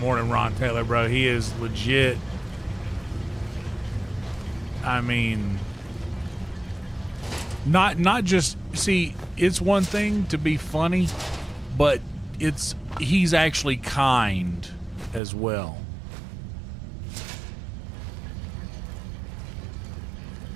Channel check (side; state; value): left; drops out; at 15.2 s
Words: than Ron Taylor, bro. He is legit. I mean, not just, see, it's one thing to be funny, but he's actually kind as well.